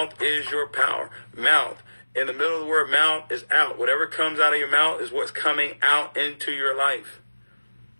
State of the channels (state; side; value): inverted; both; correlation -1.00